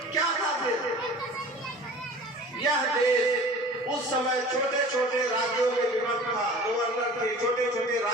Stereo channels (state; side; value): normal; both; correlation 0.42